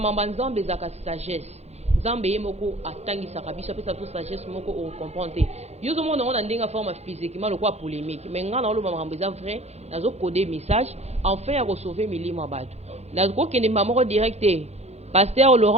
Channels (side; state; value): left; late; 0.31 ms